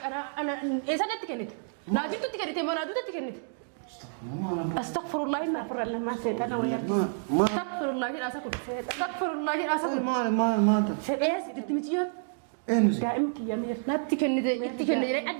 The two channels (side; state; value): left; silent; digital silence